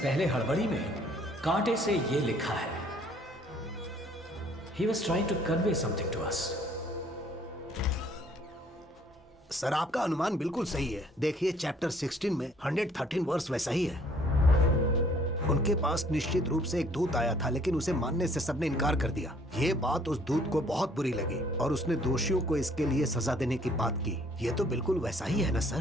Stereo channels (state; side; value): normal; both; correlation 0.60